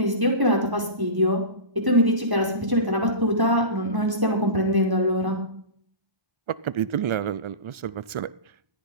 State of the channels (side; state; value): left; late; 1.0 ms